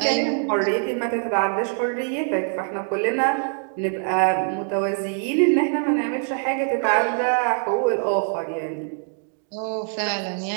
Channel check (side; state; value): left; silent; 59 dB below the other